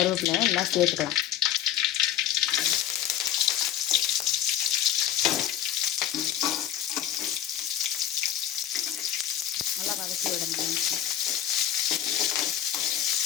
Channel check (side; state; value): right; quieter; 10.9 dB